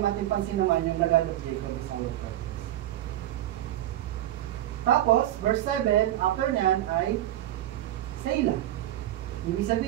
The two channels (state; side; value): quieter; left; 13.3 dB